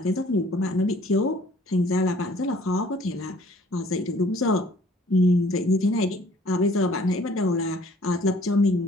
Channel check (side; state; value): both; normal; correlation 0.56